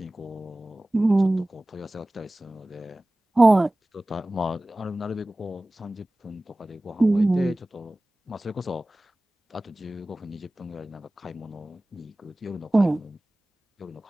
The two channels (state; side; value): normal; both; correlation 0.98